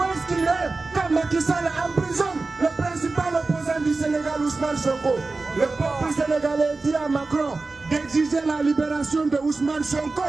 est-ce qu'il est quand Macky Sall emprisonne le principal opposant du Sénégal, Ousmane Sonko? Le peuple sénégalais dit à Macron d'exiger la libération de Ousmane Sonko.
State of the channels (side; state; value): left; quieter; 3.6 dB